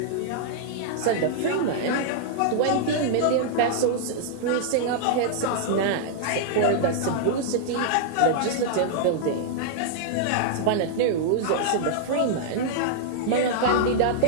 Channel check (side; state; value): both; different; correlation -0.01